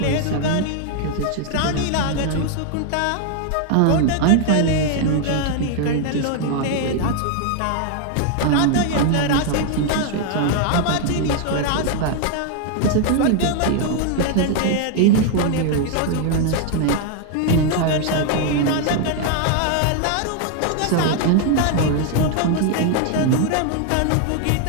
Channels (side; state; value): both; different; correlation 0.00